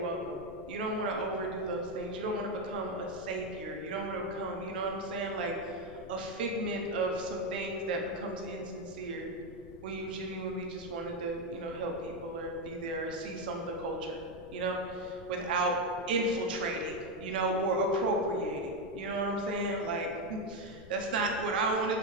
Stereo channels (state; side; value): noise; left; rumble, 16 dB below the sound